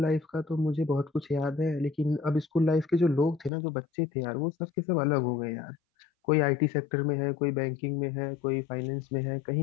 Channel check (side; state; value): right; drops out; at 3.5 s